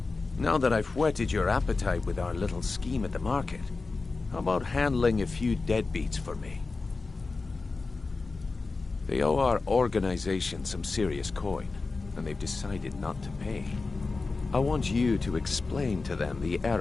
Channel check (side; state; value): right; quieter; 3.9 dB